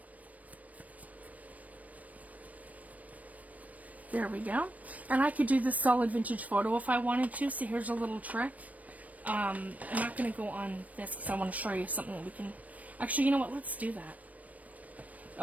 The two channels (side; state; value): left; late; 0.071 ms